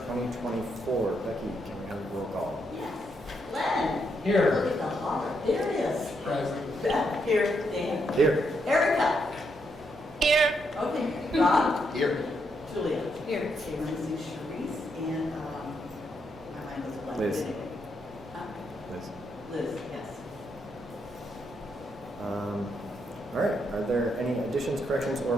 Becky, can we have a roll call? Yes. Len. Here. Look at the holler. There it is. Present. Beth. Here. Dan. Here. Erica. Here. Okay. Rob. Here. Julia. Here. Okay, Lindsay, Sharice, and my mind was blank. Liz. Huh? Liz. Liz, yes. All right. Are there any additions, corrections, or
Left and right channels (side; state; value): both; normal; correlation 0.78